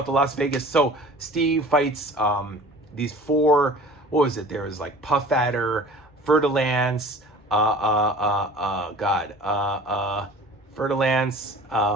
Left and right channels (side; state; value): both; normal; correlation 0.44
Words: the Las Vegas. So Steve fights these 4... What was it? There was like Puff Adder, Fer-de-Lance, Fer-de-Lance,